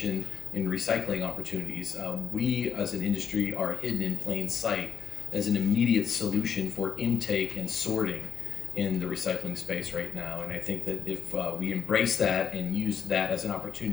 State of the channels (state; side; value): quieter; right; 7.3 dB